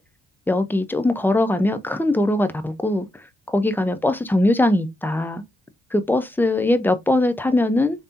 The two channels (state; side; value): normal; both; correlation 0.86